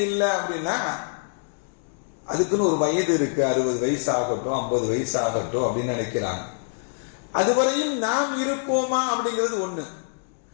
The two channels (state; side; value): silent; right; digital silence